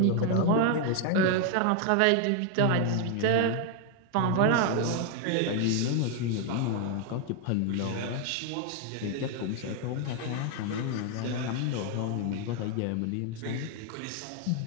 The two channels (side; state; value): both; different; correlation 0.00